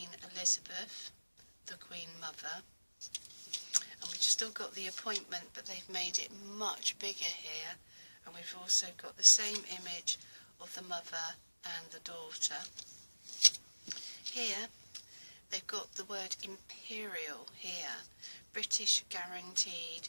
Elizabeth, the Queen Mother. And we've still got the appointment, but they've made it much bigger here. And we've also got the same image of the mother and the daughter. Here, they've got the word Imperial here, British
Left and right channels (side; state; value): both; inverted; correlation -1.00